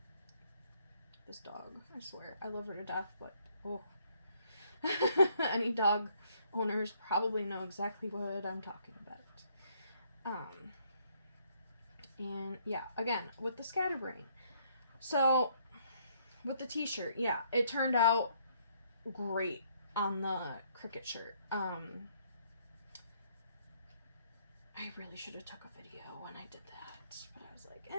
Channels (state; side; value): inverted; both; correlation -0.68